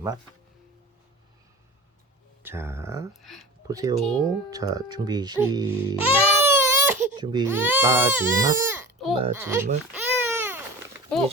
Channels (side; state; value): both; normal; correlation 0.33